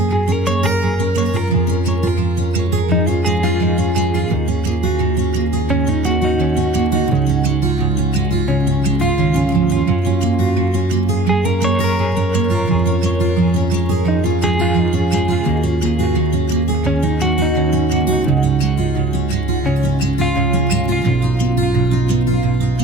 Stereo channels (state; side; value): normal; both; correlation 0.49